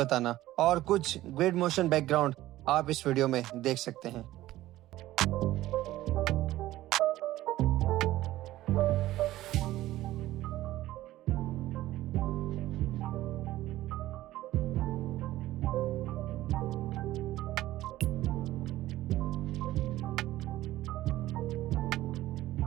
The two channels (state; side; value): quieter; left; 15.5 dB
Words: और कुछ ग्रिड मोशन बैकग्राउंड आप इस वीडियो में देख सकते हैं।